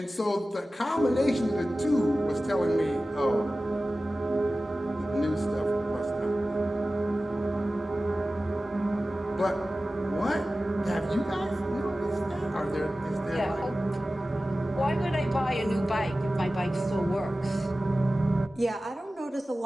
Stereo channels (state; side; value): normal; both; correlation 0.96